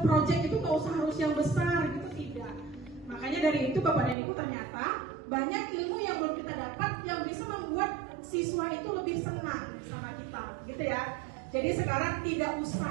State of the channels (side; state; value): left; drops out; at 4.2 s